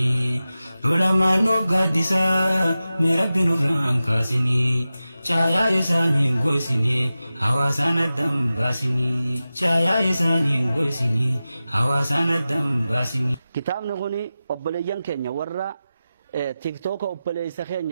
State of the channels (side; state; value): both; inverted; correlation -0.94